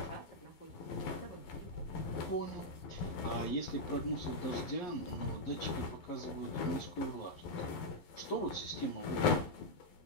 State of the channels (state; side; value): late; right; 11 ms